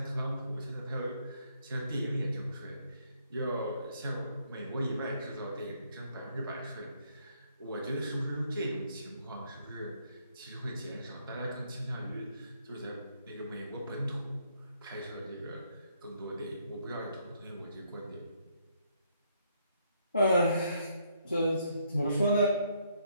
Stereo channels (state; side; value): inverted; both; correlation -0.71